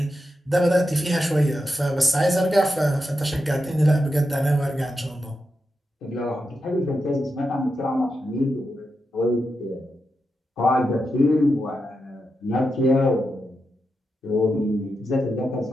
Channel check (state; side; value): normal; both; correlation 0.87